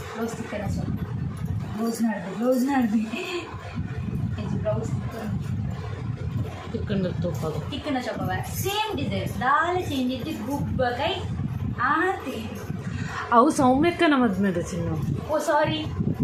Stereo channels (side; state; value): both; identical; correlation 1.00